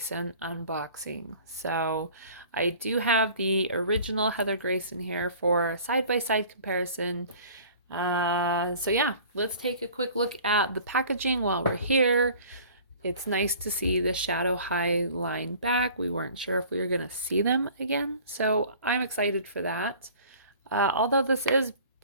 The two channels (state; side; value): inverted; both; correlation -0.47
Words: unboxing. So, I do have the original Heather Grayson here for a side-by-side comparison. Yeah, let's take a quick look at the packaging while we're here. It's nice to see the Shadow High line back. We weren't sure if we were going to see them again, so I'm excited for that. Although this is